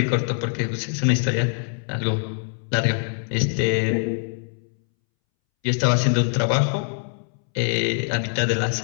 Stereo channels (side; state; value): right; silent; 63 dB below the other